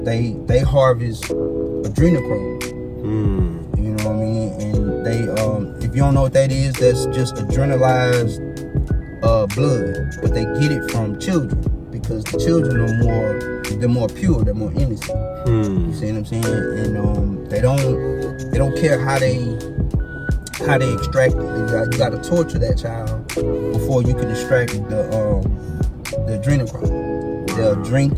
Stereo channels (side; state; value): both; identical; correlation 1.00